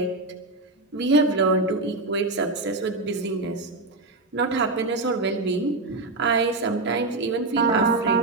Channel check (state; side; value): quieter; left; 3.1 dB